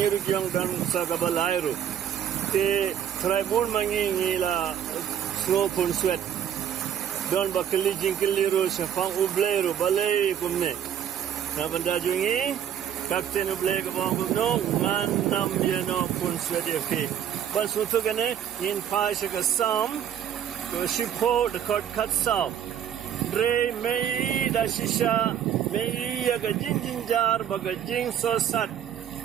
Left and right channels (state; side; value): quieter; left; 9.5 dB